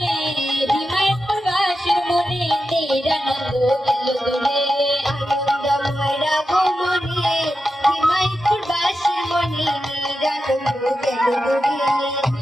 হিমায়তপুর বাসীর মনে নিরানন্দ গেল দূরে, আনন্দময় রাগ মনে হিমায়তপুর বাসীর মনে নিরানন্দ গেল দূরে,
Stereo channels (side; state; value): both; normal; correlation 0.90